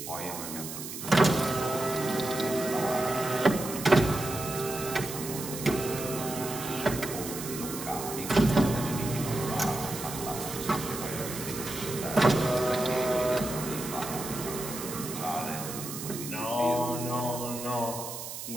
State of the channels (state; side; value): noise; right; hiss, 8 dB below the sound